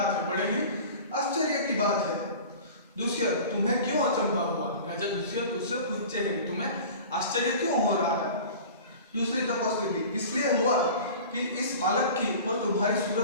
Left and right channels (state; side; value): inverted; both; correlation -0.39